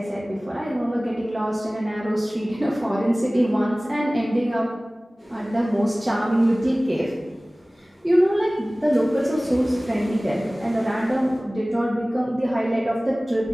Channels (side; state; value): both; normal; correlation 0.98